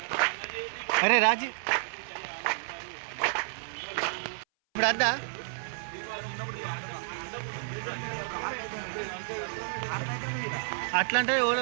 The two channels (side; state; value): left; silent; 57 dB below the other